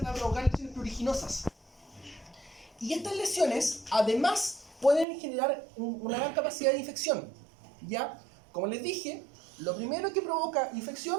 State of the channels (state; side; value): drops out; left; at 5.1 s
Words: a provocar lesiones pruriginosas. Y estas lesiones además pueden generar una gran capacidad de infección. ¿Ya? Como les dije, lo primero que provoca